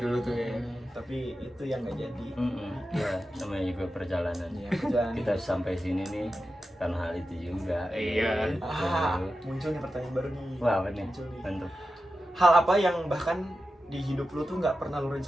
tuh ya. Tapi itu yang nggak jadi. Ya, namanya juga perjalanan. Iya, kerjaan. Kita sampai sini nih karena hal itu juga. Iya. Gitu. Muncul nih pertanyaan baru nih. Wah, apa nih? Muncul nih. Mantap. Hal apa yang bahkan di hidup lu tuh nggak pernah lu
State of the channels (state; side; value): normal; both; correlation 0.92